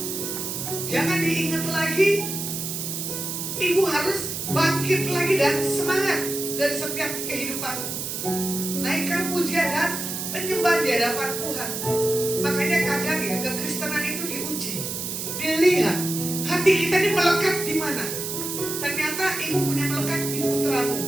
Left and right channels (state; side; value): noise; right; hiss, 4 dB below the sound